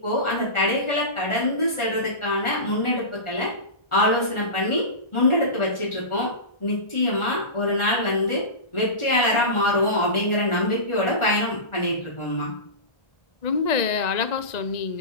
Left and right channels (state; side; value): late; right; 1.4 ms